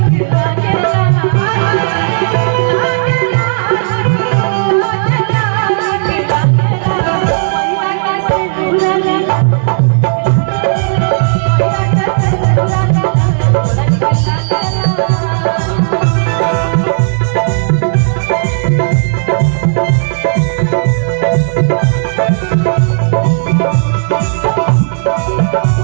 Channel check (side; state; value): left; silent; digital silence